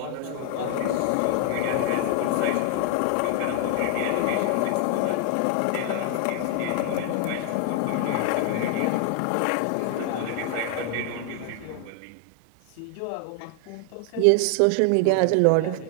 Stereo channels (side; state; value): both; different; correlation 0.00